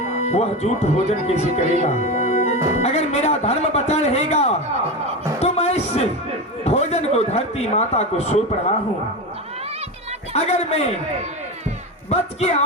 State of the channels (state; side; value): normal; both; correlation 0.20